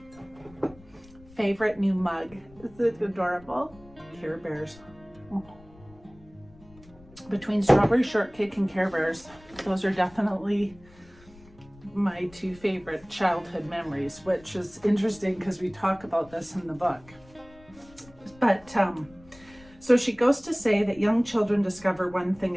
favorite new mug. Is it adorable? Care Bears. Between strawberry shortcake and Care Bears, those are definitely my 2 favorite childhood memories, which is interesting because we talk about this in the book. But so she goes to say that young children discover one thing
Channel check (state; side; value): noise; left; rumble, 24 dB below the sound